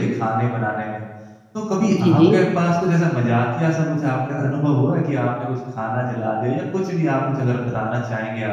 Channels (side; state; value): both; identical; correlation 1.00